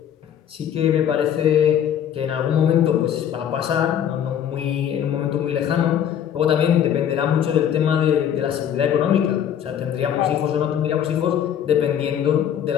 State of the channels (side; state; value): right; quieter; 9.4 dB